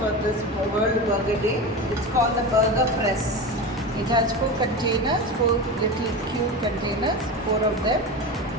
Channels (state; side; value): normal; both; correlation 0.25